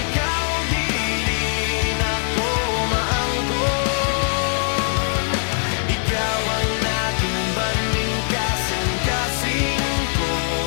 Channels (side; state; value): right; silent; 61 dB below the other